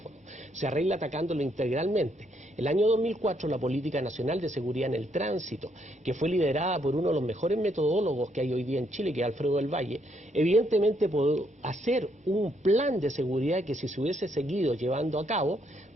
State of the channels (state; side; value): normal; both; correlation 0.73